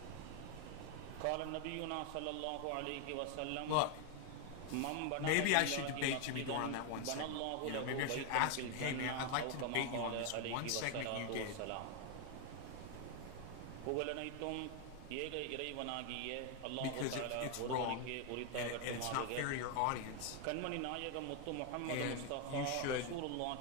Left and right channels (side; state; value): both; different; correlation 0.01